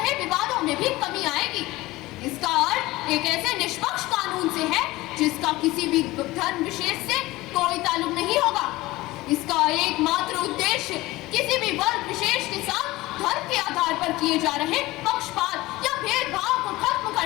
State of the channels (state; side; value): quieter; right; 19.1 dB